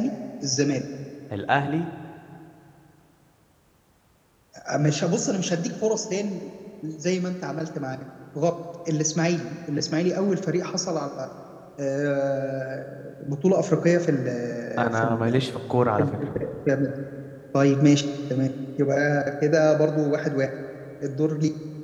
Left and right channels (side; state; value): both; identical; correlation 1.00